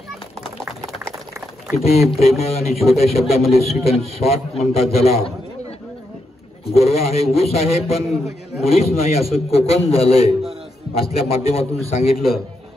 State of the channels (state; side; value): normal; both; correlation 0.82